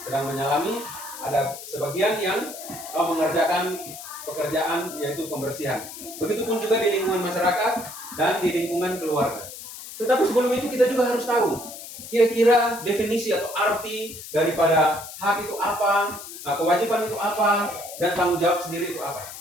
sedang menyalami. Ada sebagian yang mengerjakan pekerjaan yaitu pembersihan. Begitupun juga di lingkungan masyarakat dan di lingkungan keluarga. Tetapi sebelum itu kita juga harus tahu kira-kira definisi atau arti daripada hak itu apa, kewajiban itu apa, dan tanggung jawab sendiri itu apa.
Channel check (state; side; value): noise; left; hiss, 12 dB below the sound